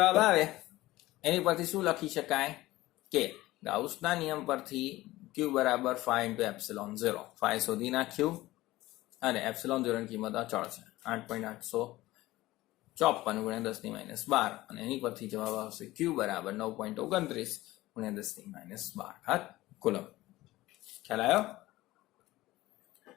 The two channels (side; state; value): right; quieter; 17.6 dB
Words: આવે એની પરથી શું લખી શકાય કે ગાઉસના નિયમ પરથી q બરાબર phi ઇન્ટુ એપ્સિલોન 0. phi શોધી નાખ્યું અને એપ્સિલોન 0 ની કિંમત અચળ છે 8.854 ગુણ્યા 10⁻12 અને એની પરથી જવાબ આવશે q બરાબર 9.29 ગુણ્યા 10⁻12 કુલમ. ખ્યાલ આવ્યો?